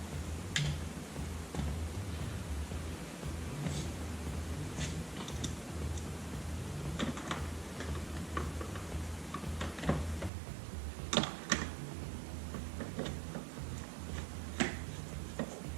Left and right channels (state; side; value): drops out; left; at 10.3 s